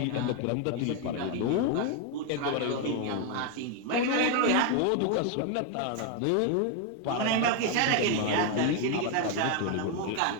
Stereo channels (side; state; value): both; different; correlation 0.01